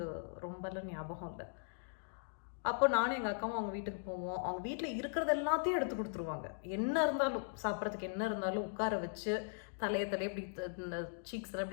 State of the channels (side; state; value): right; silent; digital silence